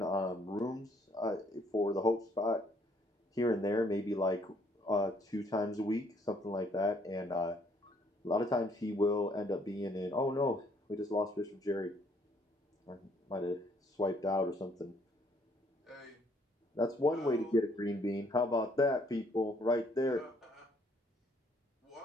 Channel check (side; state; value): both; normal; correlation 0.66